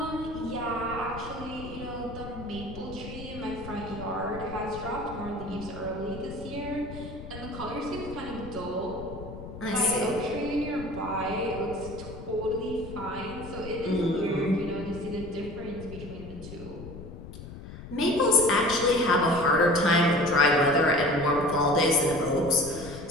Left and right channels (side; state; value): left; noise; rumble, 12 dB below the sound